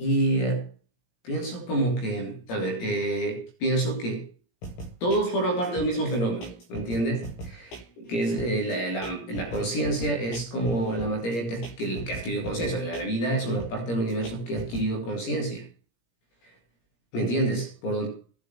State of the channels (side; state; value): right; late; 17 ms